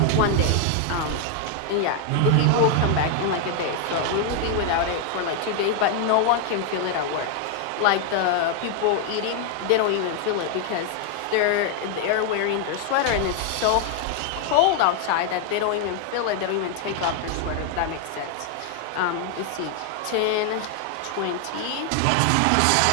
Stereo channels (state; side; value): different; both; correlation 0.00